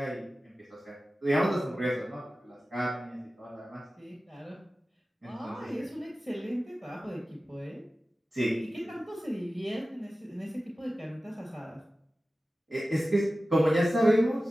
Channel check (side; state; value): both; normal; correlation 0.95